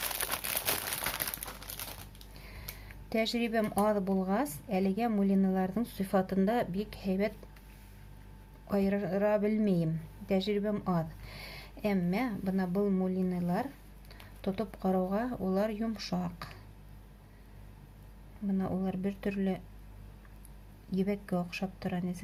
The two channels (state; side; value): identical; both; correlation 1.00